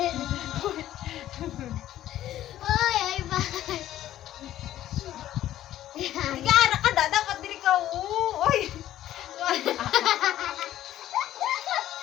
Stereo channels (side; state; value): right; quieter; 12.9 dB